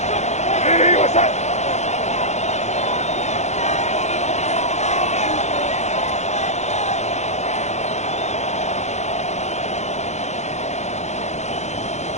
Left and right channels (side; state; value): right; late; 0.33 ms